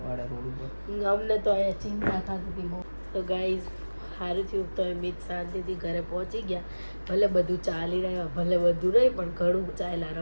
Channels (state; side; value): inverted; both; correlation -1.00